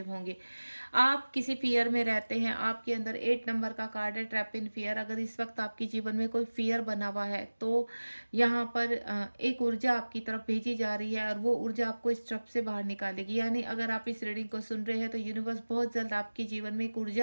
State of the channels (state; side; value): inverted; both; correlation -1.00